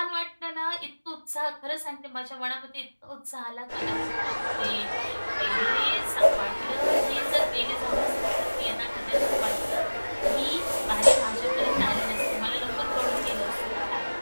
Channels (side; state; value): both; inverted; correlation -1.00